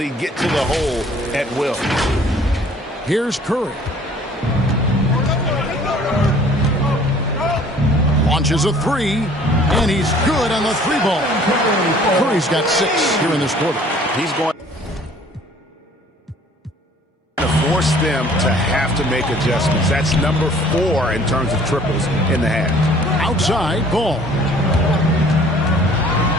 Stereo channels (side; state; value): both; normal; correlation 0.54